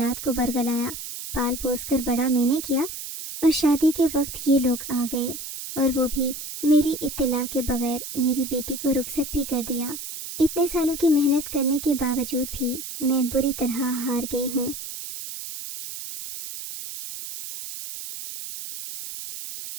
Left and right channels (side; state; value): right; noise; hiss, 9 dB below the sound